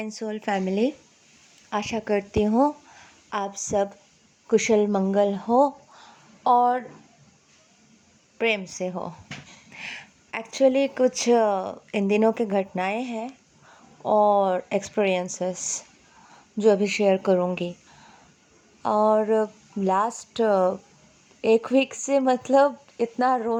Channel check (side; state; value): both; identical; correlation 1.00